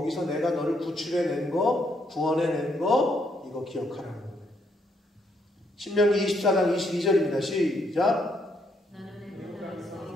내가 너를 구출해낸 거, 구원해낸 거, 이거 기억하라는 거예요. 신명기 24장 22절입니다. 시작.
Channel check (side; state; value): both; normal; correlation 0.73